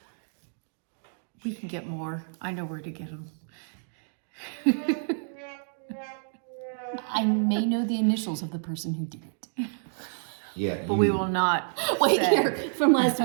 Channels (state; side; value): silent; left; digital silence